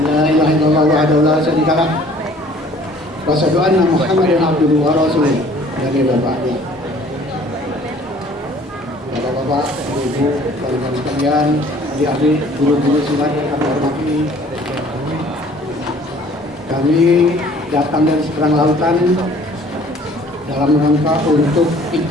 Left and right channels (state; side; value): normal; both; correlation 0.54